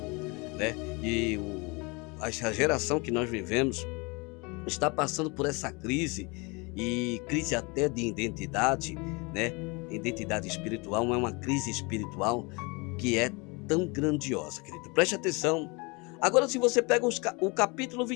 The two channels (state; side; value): quieter; right; 28.3 dB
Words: e a geração que nós vivemos está passando por essa crise, e crise até de identidade, Identidade espiritual, não é uma crise espiritual que é tão grandiosa, querido. Preste atenção. Agora, se você pega o capítulo